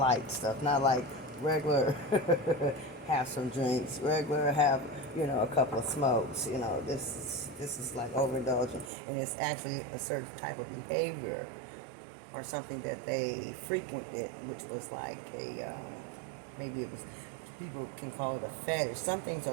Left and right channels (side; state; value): left; drops out; at 8.9 s